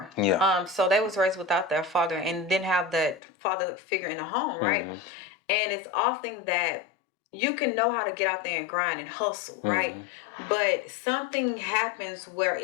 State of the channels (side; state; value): right; drops out; at 3.2 s